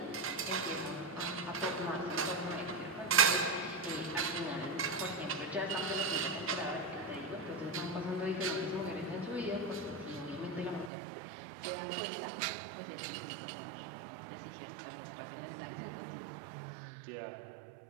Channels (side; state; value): left; drops out; at 10.9 s